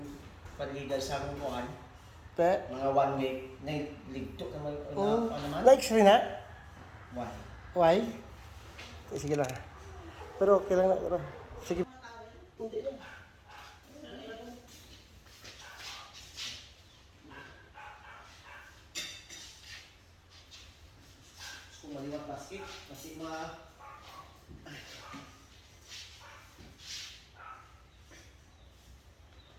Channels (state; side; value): identical; both; correlation 1.00